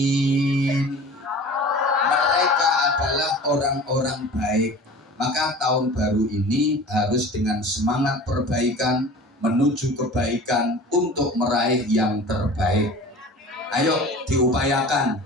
Mereka adalah orang-orang baik. Maka tahun baru ini harus dengan semangat perbaikan menuju kebaikan untuk meraih yang terbaik. Ayo diupayakan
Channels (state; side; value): normal; both; correlation 0.40